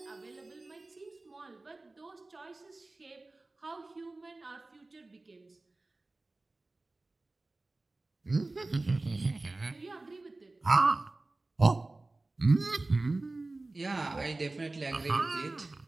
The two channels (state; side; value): quieter; left; 3.1 dB